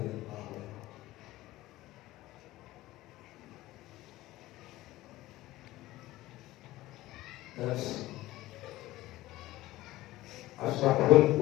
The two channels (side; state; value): right; quieter; 17.0 dB